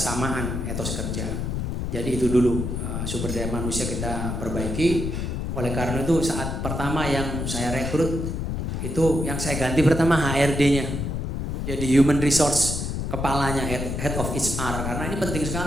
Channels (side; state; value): left; noise; rumble, 3 dB below the sound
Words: etos kerja. Jadi itu dulu sumber daya manusia kita perbaiki. Oleh karena itu saat pertama yang saya rekrut itu yang saya ganti pertama HRD-nya. Jadi human resource kepalanya, head of HR, karena ini penting